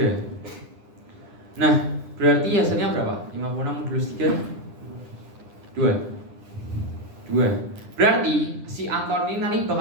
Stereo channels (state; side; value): late; left; 9.9 ms